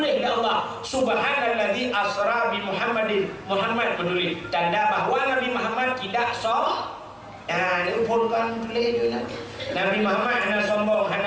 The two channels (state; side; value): identical; both; correlation 1.00